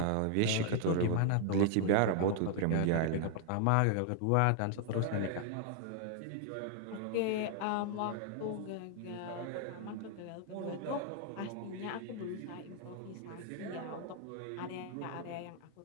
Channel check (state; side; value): different; both; correlation 0.00